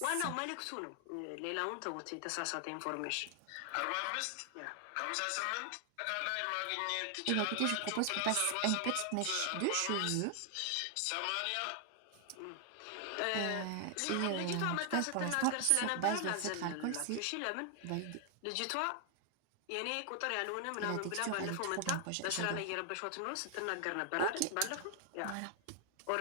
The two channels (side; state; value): both; different; correlation 0.00